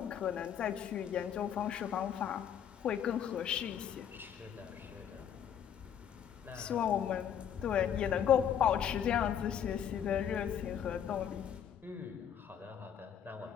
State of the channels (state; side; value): quieter; right; 8.9 dB